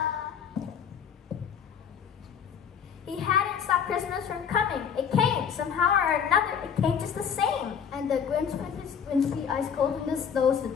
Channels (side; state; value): right; quieter; 7.5 dB